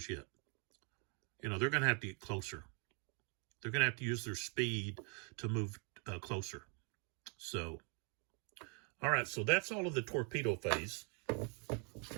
yet. You know, they're going to have to get closer. They're going to have to use their speed to move closer. So, all right, so that's all of the torpedo phase,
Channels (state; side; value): quieter; left; 36.3 dB